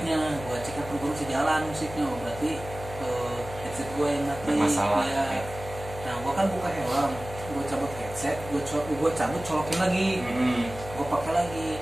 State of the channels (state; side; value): noise; left; hum, 12 dB below the sound